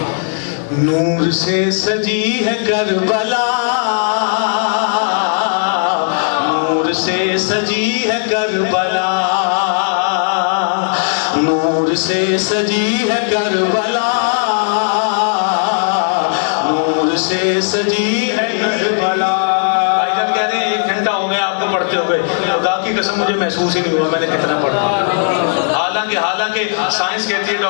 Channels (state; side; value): silent; right; digital silence